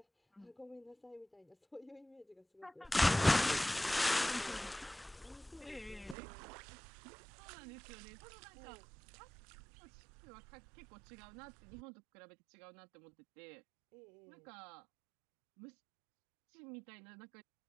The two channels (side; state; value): left; drops out; at 6.2 s